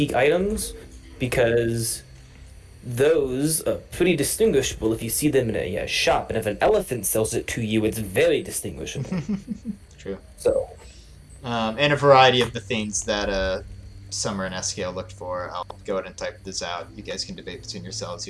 items because those are pretty distinguishable if you see them in a shop, and if an elephant sells it to you, it's very distinguishable. True. So, And a variety of the things that Summer and Eskeil looked for. I'll go ahead and type this out. You guys can debate between yourselves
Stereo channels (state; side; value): identical; both; correlation 1.00